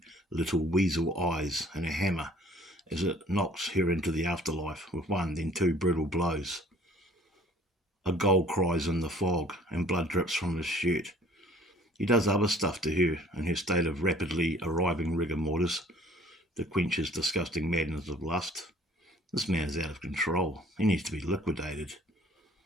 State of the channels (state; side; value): normal; both; correlation 0.54